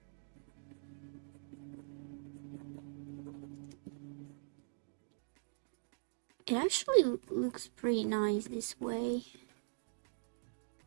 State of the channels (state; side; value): silent; left; digital silence